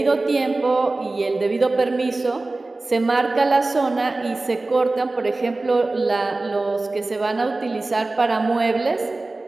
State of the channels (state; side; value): quieter; left; 3.2 dB